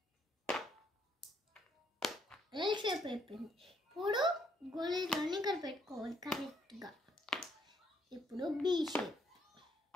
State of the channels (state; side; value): normal; both; correlation 0.70